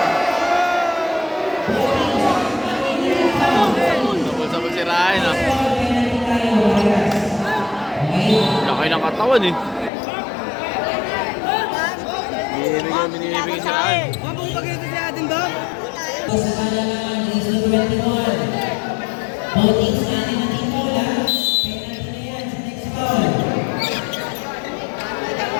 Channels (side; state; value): right; drops out; at 9.9 s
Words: si Ryan ah. Laki ng katawan eh. Binibigyan si Ryan. Sa kalamangan is the 21. Voting sa atin na Team Bola. Penalty na yan sa next foul.